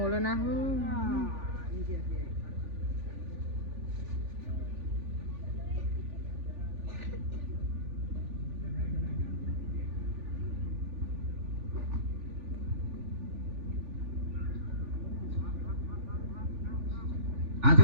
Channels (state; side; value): late; left; 3.4 ms